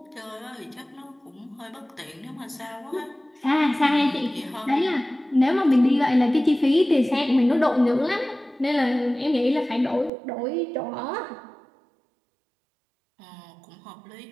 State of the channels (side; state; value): left; drops out; at 10.1 s